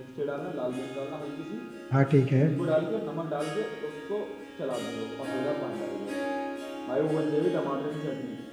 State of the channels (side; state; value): both; identical; correlation 1.00